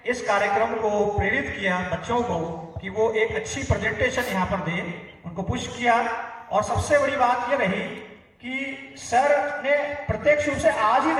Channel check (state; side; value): identical; both; correlation 1.00